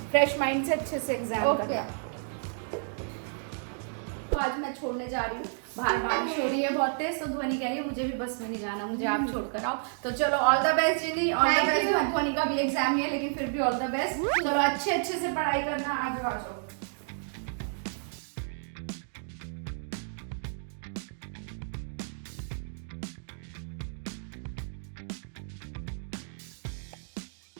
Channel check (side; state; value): left; silent; digital silence